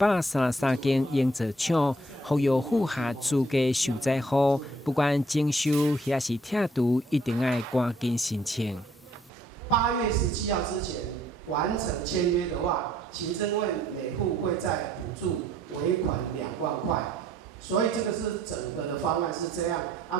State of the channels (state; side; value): normal; both; correlation 0.64